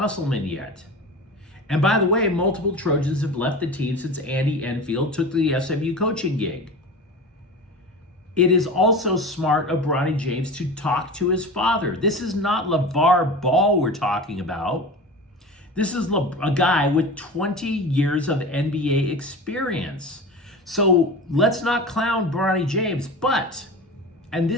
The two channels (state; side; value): normal; both; correlation 0.31